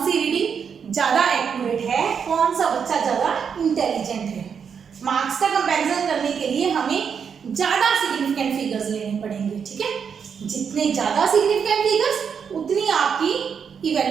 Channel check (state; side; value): quieter; left; 6.8 dB